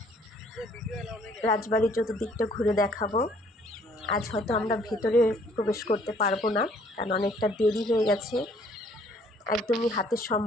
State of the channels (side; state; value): both; normal; correlation 0.61